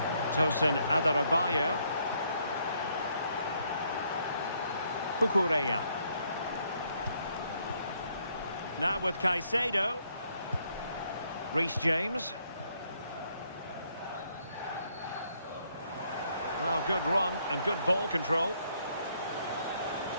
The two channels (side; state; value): both; inverted; correlation -0.71